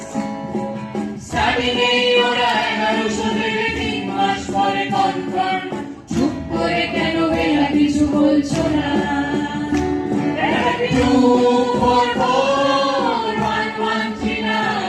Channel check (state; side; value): identical; both; correlation 1.00